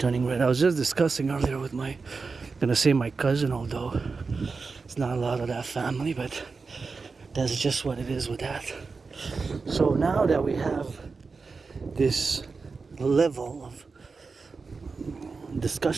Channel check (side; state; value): left; quieter; 4.5 dB